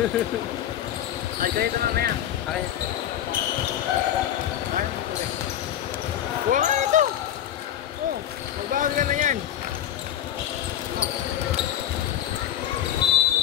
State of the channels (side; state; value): right; quieter; 11.0 dB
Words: Ay, kayo ito mamaya. Okay. Wala ito! Oh, magbawag ka na yan.